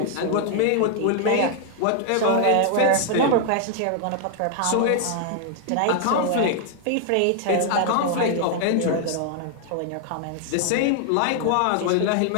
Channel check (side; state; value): both; different; correlation 0.00